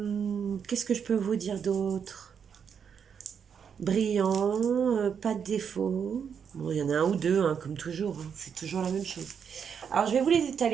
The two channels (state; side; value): quieter; left; 7.2 dB